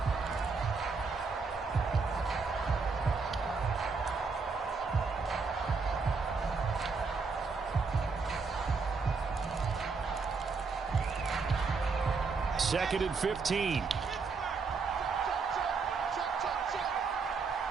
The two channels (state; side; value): quieter; left; 4.7 dB